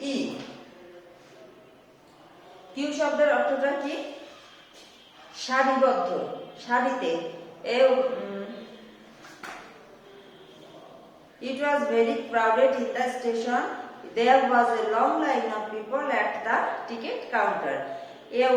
কিউ শব্দের অর্থটা কি? সারিবদ্ধ, সারিতে। It was very crowded in the station. There was a long line of people at the ticket counter. A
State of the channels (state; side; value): identical; both; correlation 1.00